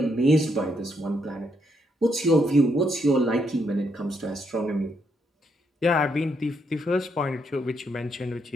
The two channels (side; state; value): both; normal; correlation 0.76